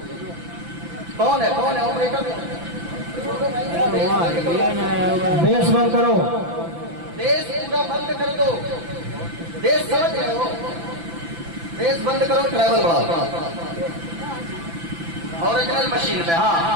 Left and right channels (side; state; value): left; late; 5.9 ms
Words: کون ہے آپریٹر بیس بند کرو بیس پورا بند کر دو بیس سمجھ رہے ہو بیس بند کرو ٹریول بڑھاؤ اوریجنل مشین پہ